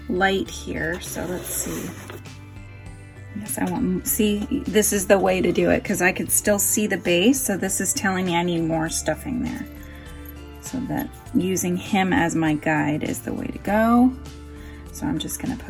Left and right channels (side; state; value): both; identical; correlation 1.00